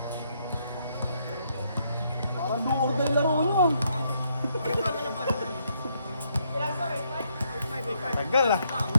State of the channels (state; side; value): inverted; both; correlation -0.73